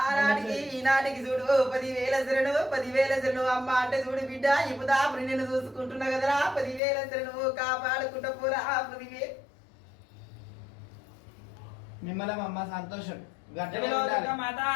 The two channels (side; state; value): right; drops out; at 6.8 s